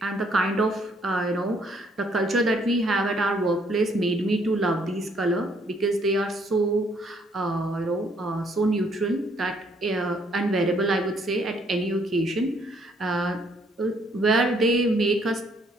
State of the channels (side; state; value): both; normal; correlation 0.67